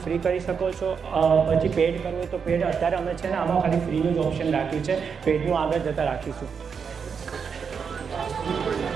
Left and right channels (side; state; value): left; quieter; 6.3 dB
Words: ફ્રી કરી શકો છો. પછી પેડ કરવું હોય તો પેડ. અત્યારે અમે છે ને આમાં ખાલી ફ્રીનું જ ઓપ્શન રાખ્યું છે. પેડનું આગળ જતાં રાખીશું.